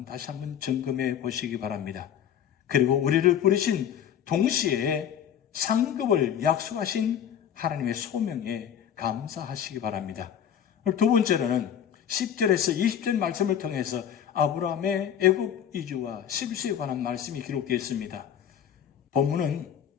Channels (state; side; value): quieter; right; 9.2 dB